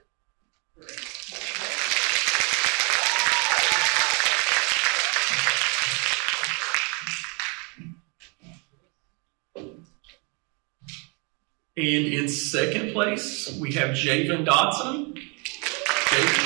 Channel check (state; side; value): quieter; left; 33.8 dB